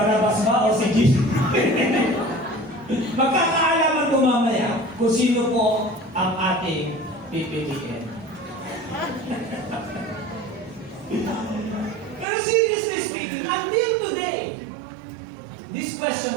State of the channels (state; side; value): drops out; left; at 12.2 s